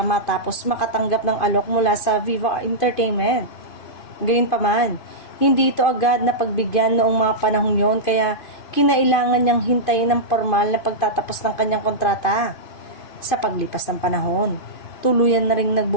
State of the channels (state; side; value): late; right; 2.5 ms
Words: makatanggap ng alok mula sa Viva Entertainment. Gayunpaman, hindi ito agad na pagbigyan noong mga panahong yon kaya kinailangan niyang hintayin ng formal na pagtatapos ng kanyang kontrata. Sa paglipas ng panahon, tuluyan na rin